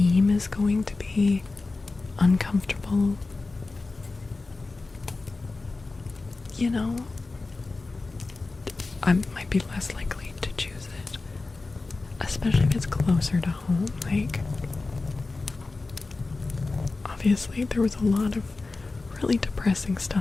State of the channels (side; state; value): right; quieter; 3.6 dB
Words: is going to be uncomfortable, you know, I might be less likely to choose it, especially if it's closer to home. Like, obviously there was a lot of really depressing